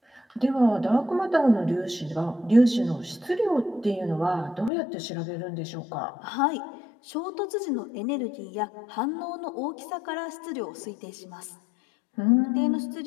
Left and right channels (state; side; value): drops out; right; at 4.7 s